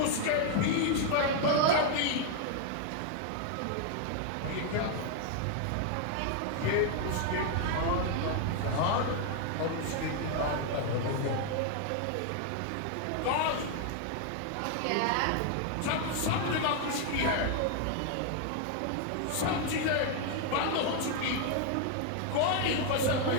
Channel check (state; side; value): different; both; correlation 0.00